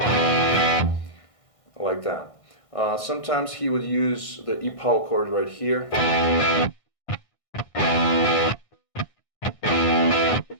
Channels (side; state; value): right; late; 1.6 ms